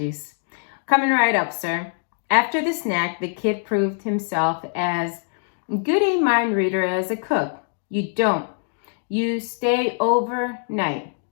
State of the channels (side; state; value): right; silent; digital silence